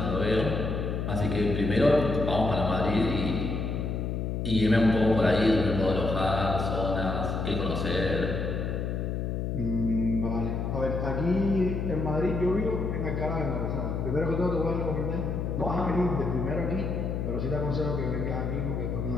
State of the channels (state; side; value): noise; left; hum, 2 dB below the sound